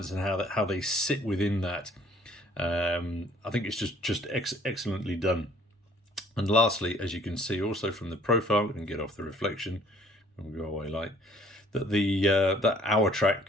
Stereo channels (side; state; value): both; normal; correlation 0.57